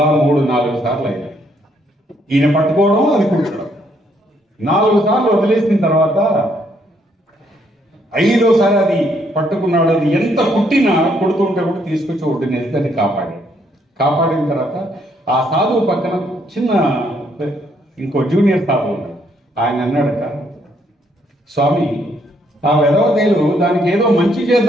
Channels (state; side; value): normal; both; correlation 0.71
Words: 3-4 సార్లు అయ్యాయి. ఈయన పట్టుకోవడం, అది కుట్టడం. 4 సార్లు వదిలేసిన తర్వాత 5వసారి అది పట్టుకున్నాడు. అది ఎంత కుడుతుంటే కూడా తీసుకొచ్చి ఒడ్డునేసి దాన్ని కాపాడిన తర్వాత ఆ సాధువు పక్కన చిన్న ఇంకో జూనియర్ సాధువు ఉన్నాడు. ఆయన అన్నాడట, స్వామి, ఆ వెధవతేలు దానికి ఏదో మంచి